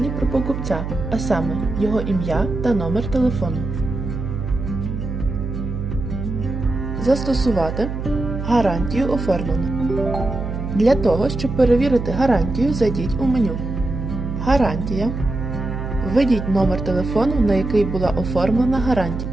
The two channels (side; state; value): right; noise; hum, 5 dB below the sound